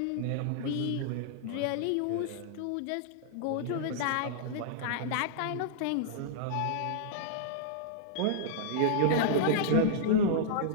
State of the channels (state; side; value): different; both; correlation -0.02